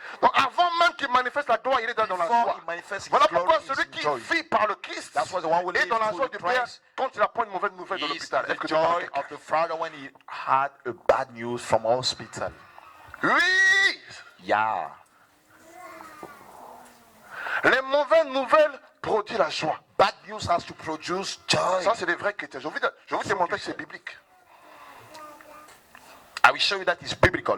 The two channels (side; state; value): both; identical; correlation 1.00